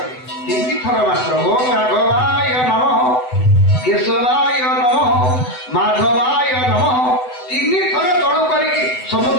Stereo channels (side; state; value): right; late; 7.9 ms